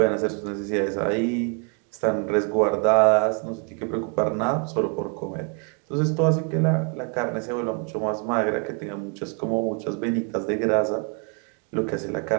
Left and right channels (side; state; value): left; quieter; 37.9 dB